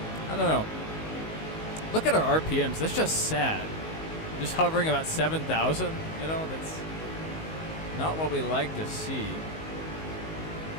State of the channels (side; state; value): right; late; 19 ms